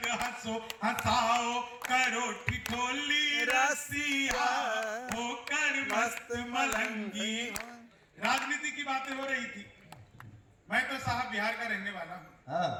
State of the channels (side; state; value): both; identical; correlation 1.00